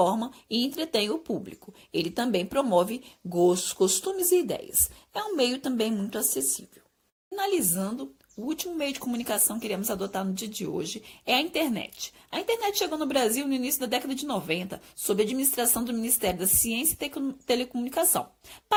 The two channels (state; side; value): identical; both; correlation 1.00